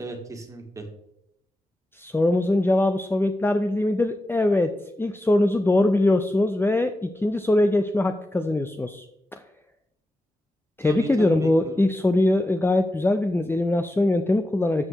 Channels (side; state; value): both; normal; correlation 0.91